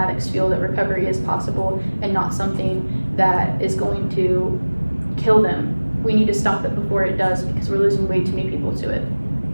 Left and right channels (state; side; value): inverted; both; correlation -1.00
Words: feel that recovery is possible and not something that is going to kill them. We need to stop it before it does, because we're losing way too many people to it.